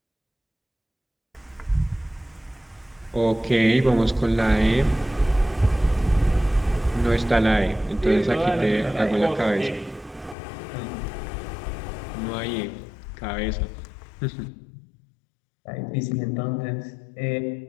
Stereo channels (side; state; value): right; drops out; at 10.4 s